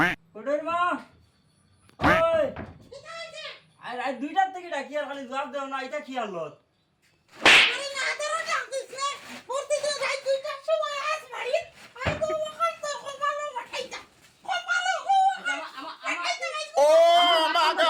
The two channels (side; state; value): both; identical; correlation 1.00